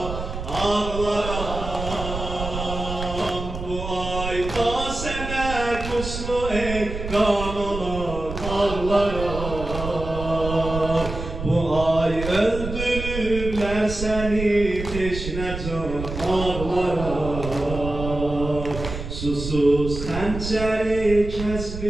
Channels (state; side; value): noise; right; rumble, 7 dB below the sound